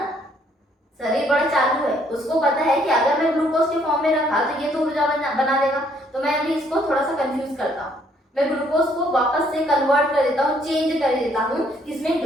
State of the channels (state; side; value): normal; both; correlation 0.66